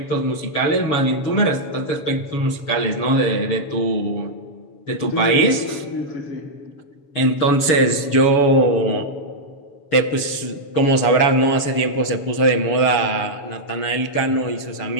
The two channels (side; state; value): right; late; 6.9 ms